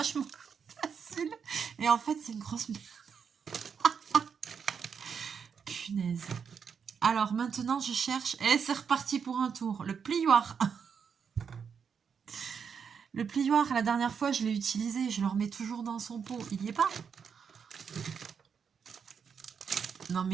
facile. Et en fait, c'est une grosse merde. Punaise. Alors, maintenant, je cherche... Et c'est reparti pour un tour. Le plioir. Le plioir, la dernière fois, je l'ai utilisé. Je le remets toujours dans son pot. Il n'y est pas. Non,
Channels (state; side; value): quieter; left; 6.7 dB